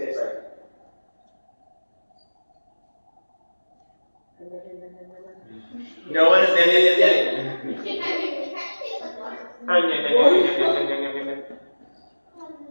like. No one is.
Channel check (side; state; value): both; inverted; correlation -1.00